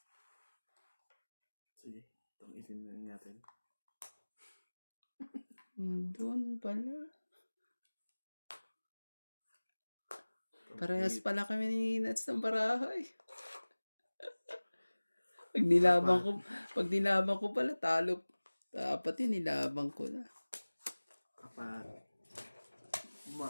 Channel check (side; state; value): both; inverted; correlation -1.00